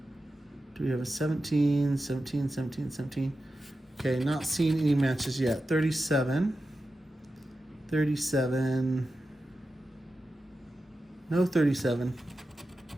Do we have a 17, 17, 17, 17? Okay, not seeing any matches yet. 37. 37. No 37.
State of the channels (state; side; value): normal; both; correlation 0.91